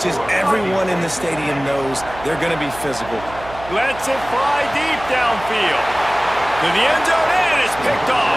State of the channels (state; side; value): noise; right; hum, 16 dB below the sound